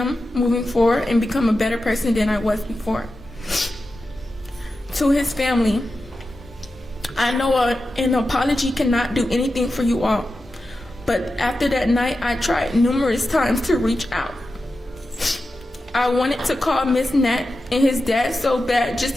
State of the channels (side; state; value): both; normal; correlation 0.92